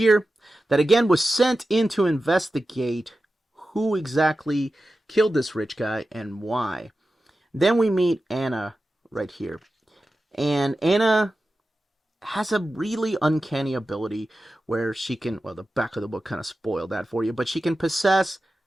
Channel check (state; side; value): normal; both; correlation 0.93